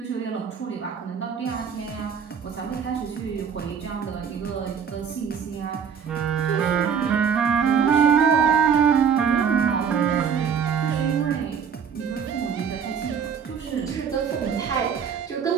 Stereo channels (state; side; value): quieter; left; 7.1 dB